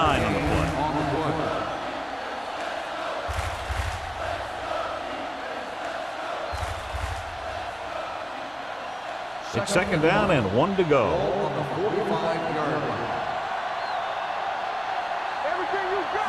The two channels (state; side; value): identical; both; correlation 1.00